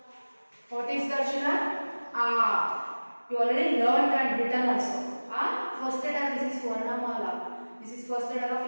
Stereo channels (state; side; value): inverted; both; correlation -1.00